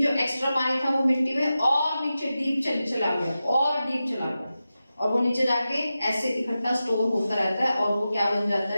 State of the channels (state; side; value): inverted; both; correlation -0.93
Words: जो एक्स्ट्रा पानी था वो मिट्टी में और नीचे डीप चला गया, और डीप चला गया, और वो नीचे जाके ऐसे इकट्ठा स्टोर होता रहता है और वो क्या बन जाता